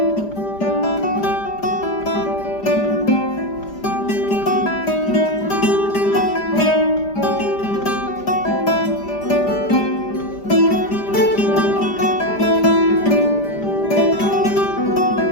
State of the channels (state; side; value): late; right; 5.0 ms